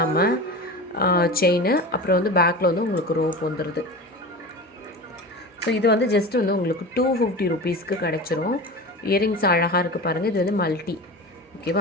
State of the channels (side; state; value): both; normal; correlation 0.30